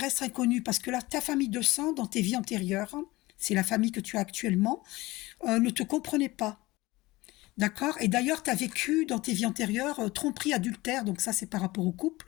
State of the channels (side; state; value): right; quieter; 20.2 dB